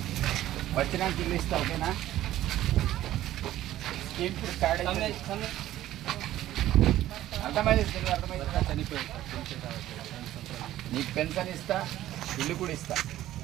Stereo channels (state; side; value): quieter; left; 13.8 dB